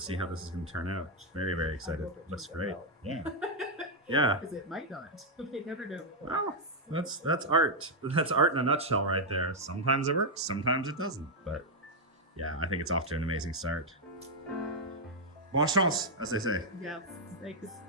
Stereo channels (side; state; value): both; normal; correlation -0.01